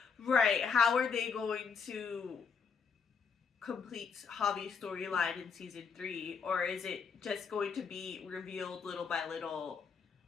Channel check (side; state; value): right; quieter; 5.9 dB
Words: Right. How are they going to complete Javi's storyline in season 3? Or is it just going to be revealed little by little